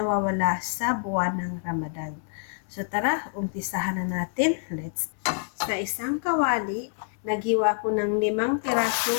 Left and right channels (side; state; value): right; silent; 60 dB below the other